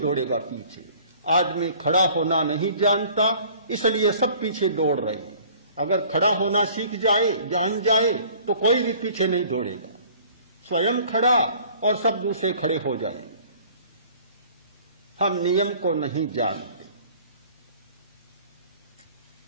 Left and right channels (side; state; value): both; inverted; correlation -0.52